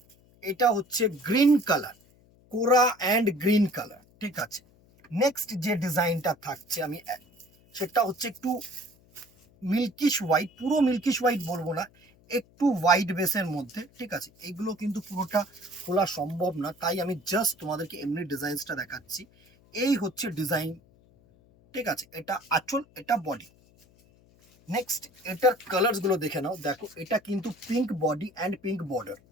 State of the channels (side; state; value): left; noise; hum, 29 dB below the sound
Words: এটা হচ্ছে গ্রিন কালার, কোরা অ্যান্ড গ্রিন কালার, ঠিক আছে। নেক্সট যে ডিজাইনটা থাকছে আমি সেটা হচ্ছে একটু মিল্কিশ হোয়াইট, পুরো মিল্কিশ হোয়াইট বলবো না, একটু হোয়াইট বেসের মধ্যে, ঠিক আছে। এগুলো কিন্তু পুরোটা খোলা সম্ভব না, তাই আমি জাস্ট তোমাদেরকে এমনি ডিজাইনসটা দেখাচ্ছি। এই হচ্ছে ডিজাইন, ঠিক আছে। এটা আঁচল, এটা বডি। নেক্সট এটার কালার্স গুলো দেখে নাও। দেখো, এটা কিন্তু pink body and pink border,